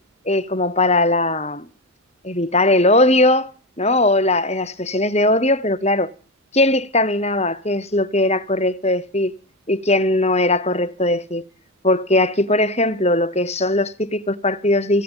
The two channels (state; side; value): normal; both; correlation 0.16